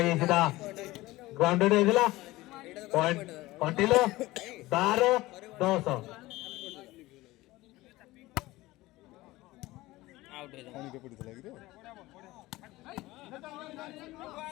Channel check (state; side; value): quieter; right; 18.8 dB